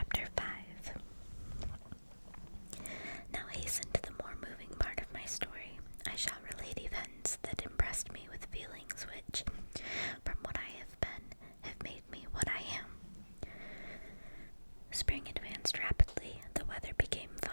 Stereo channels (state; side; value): inverted; both; correlation -1.00